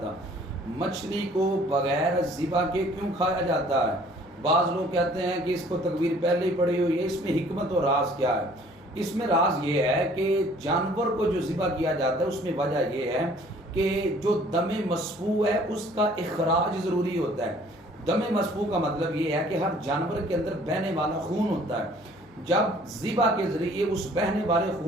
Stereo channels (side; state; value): left; noise; hum, 28 dB below the sound